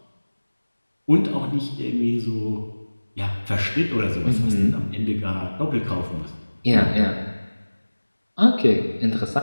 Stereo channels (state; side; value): inverted; both; correlation -1.00